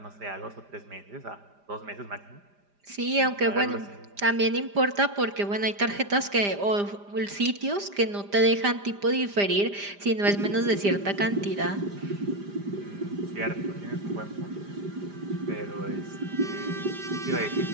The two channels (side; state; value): left; late; 5.0 ms